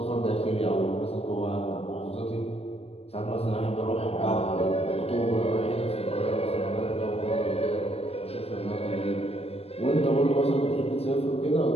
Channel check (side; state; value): right; late; 0.29 ms